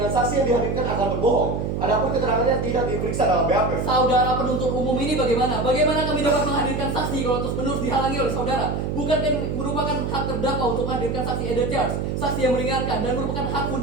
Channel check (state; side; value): noise; right; hum, 2 dB below the sound